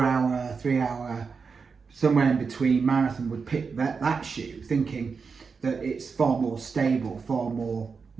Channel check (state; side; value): quieter; left; 5.3 dB